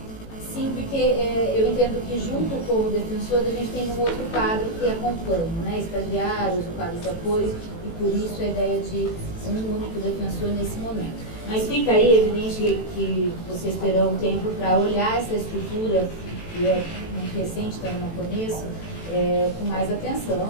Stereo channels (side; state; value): right; late; 18 ms